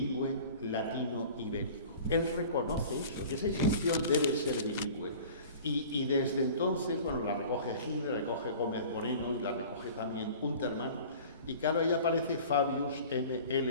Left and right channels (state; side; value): inverted; both; correlation -0.43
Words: latino-ibérico. Él reconoce eso, que esa inscripción debe ser bilingüe. Y desde entonces, bueno, la recoge Hitler, recoge Gómez Moreno y la recoge también Untermann. Y claro, ahí aparece Fabius